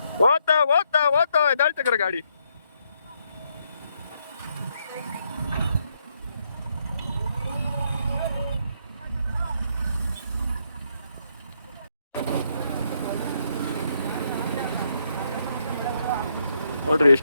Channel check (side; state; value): both; inverted; correlation -0.76